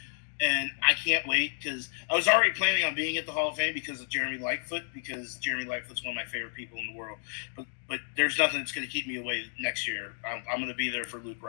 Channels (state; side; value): silent; right; 57 dB below the other